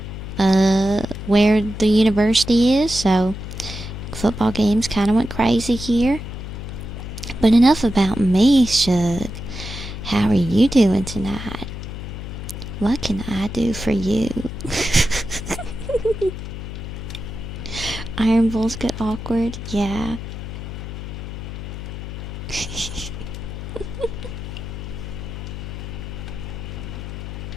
where the university is, so football games kind of went crazy here. But enough about me, Shug. How are you doing tonight? What can I do for you? Iron Bulls get awkward? Yeah.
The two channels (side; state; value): left; noise; hum, 8 dB below the sound